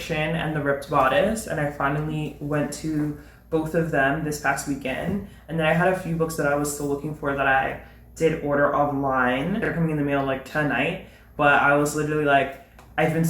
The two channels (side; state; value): both; identical; correlation 1.00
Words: and The Ripped Bodice, and I finally went to both of them this past weekend. And then I had a few books that I was still looking for that I did order online. They're coming in the mail like tonight, but I was literally like, I've been